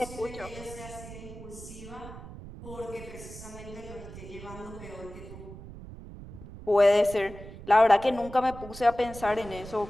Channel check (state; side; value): noise; right; rumble, 14 dB below the sound